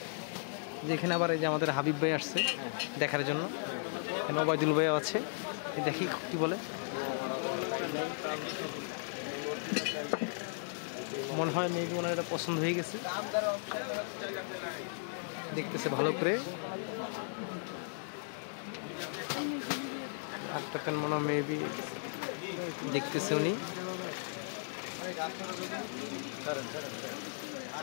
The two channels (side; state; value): right; silent; digital silence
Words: যেখানে আবার এই যে আমাদের হাবিব ভাই আসছে দেখার জন্য, এখানে ওবায়দুল ভাই আছে, দেখি কি বলে। মনে হয় মেবি ওনার এটা পছন্দ হয়ে গেছে, দেখতেছে ভালো করে। আরেকটা ফ্যান মনে হয় মেবি দেখতেছে উনি।